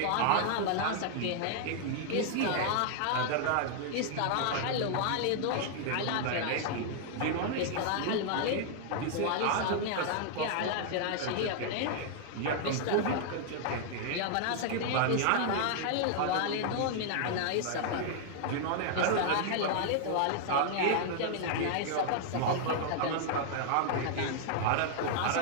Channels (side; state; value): both; different; correlation 0.00